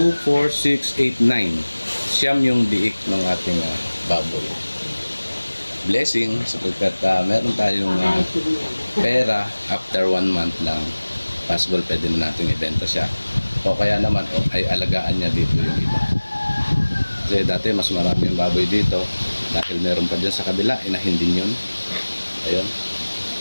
4, 6, 8, 9. Siyam yung biik ng ating baboy. Blessing sapagkat meron tayong pera after 1 month lang. Possible pwede na natin ibenta siya. O kaya naman ay alagaan niya dito yung iba. Kasi dati mas marami yung baboy dito. Dahil meron pa dyan sa kabila, inahin din yun. Ayun.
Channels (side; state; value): both; inverted; correlation -1.00